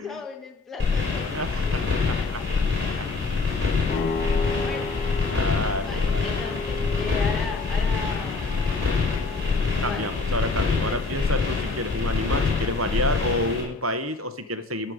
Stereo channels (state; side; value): quieter; right; 3.6 dB